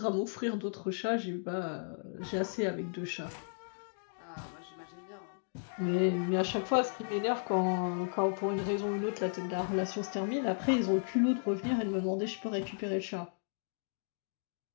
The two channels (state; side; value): silent; right; digital silence